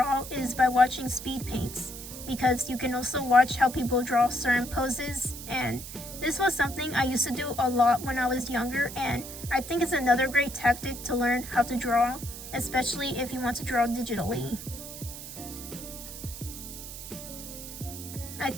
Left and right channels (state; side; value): noise; right; hiss, 11 dB below the sound